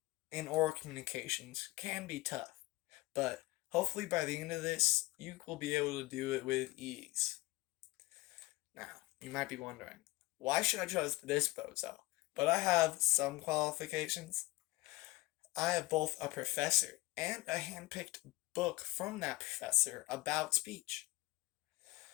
in oral communications can be tough, but hopefully by the end of this, you will be able to do it with ease. Now, you might be wondering, why should I choose this bozo? But I have some qualifications. I have both a professor and a hand-picked book from that professor about speech.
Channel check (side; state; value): right; quieter; 19.9 dB